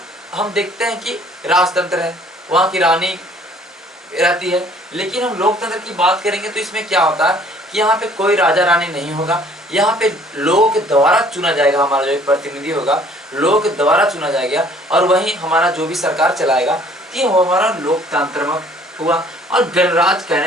हम देखते हैं कि राजतंत्र है, वहाँ की रानी रहती है। लेकिन हम लोकतंत्र की बात करेंगे तो इसमें क्या होता है कि यहाँ पे कोई राजा रानी नहीं होगा, यहाँ पे लोगों के द्वारा चुना जाएगा, हमारा जो एक प्रतिनिधि होगा लोगों के द्वारा चुना जाएगा, और वही हमारा जो भी सरकार चलाएगा, ये हमारा लोकतंत्र हुआ। और गणराज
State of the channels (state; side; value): normal; both; correlation 0.57